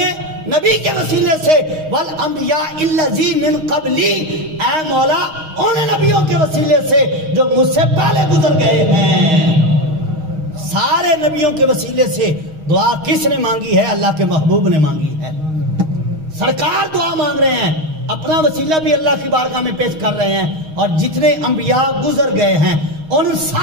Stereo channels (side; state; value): left; late; 6.4 ms